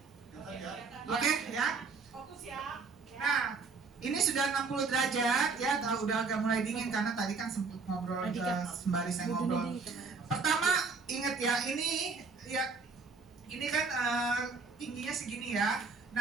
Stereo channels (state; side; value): quieter; left; 4.7 dB